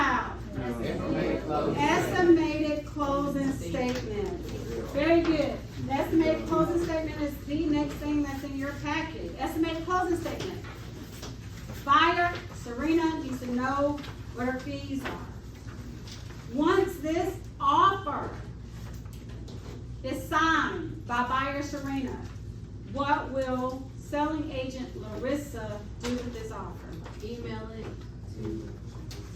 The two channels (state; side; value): identical; both; correlation 1.00